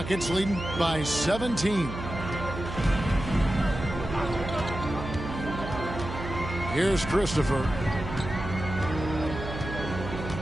leading by 17. Here's Christopher.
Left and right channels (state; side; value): noise; right; hum, 8 dB below the sound